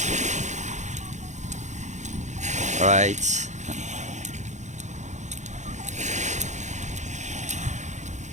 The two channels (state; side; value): late; left; 0.34 ms